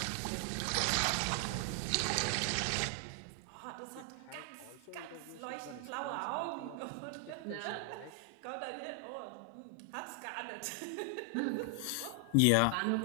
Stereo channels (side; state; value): both; different; correlation 0.00